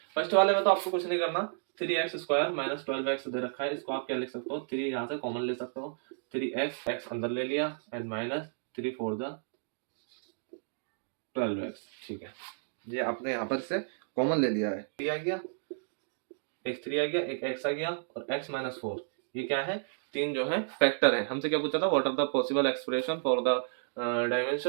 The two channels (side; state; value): left; silent; digital silence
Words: फर्स्ट वाले में तो आपको कुछ नहीं करना, 3x स्क्वायर माइनस 12x दे रखा है, इसको आप क्या लिख सकते हो, 3 यहाँ से कॉमन ले सकते हो, 3x x अंदर ले लिया एंड माइनस 3 4 12x। ठीक है, ये आपने यहाँ पर से कॉमन ले लिया है, 3 आ गया, एक 3 आ गया, एक x आ गया और x माइनस 4। ये क्या है, तीन जो है फैक्टर है। हमसे क्या पूछा था, what are the possible expression for the